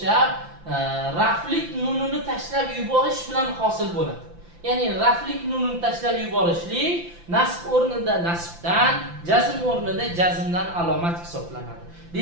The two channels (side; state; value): left; late; 5.9 ms